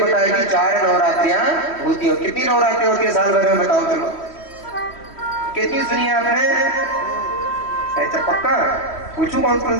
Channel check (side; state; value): right; late; 3.1 ms